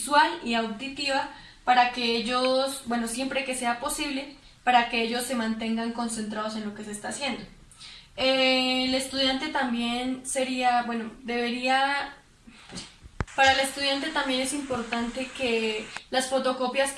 y auditiva para que ellos, siempre que sea posible, para que ellos se mantengan concentrados en lo que se está haciendo. El estudiante también para el estudiante también es importante que las fotocopias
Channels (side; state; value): both; identical; correlation 1.00